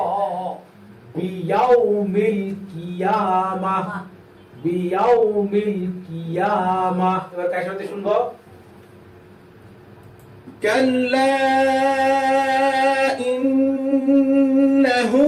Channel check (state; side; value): identical; both; correlation 1.00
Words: বিয়াউমিল কিয়ামাহ বিয়াউমিল কিয়ামাহ এবার কার সাথে শুনবো كلا إنه